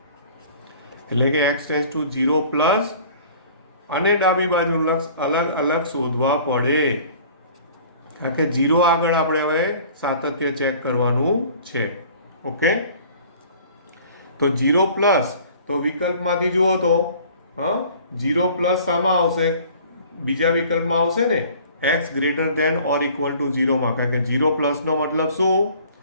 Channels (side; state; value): both; inverted; correlation -0.50